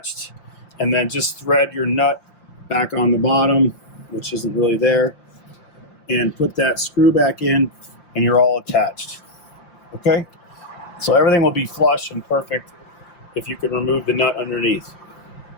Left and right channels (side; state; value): right; late; 5.8 ms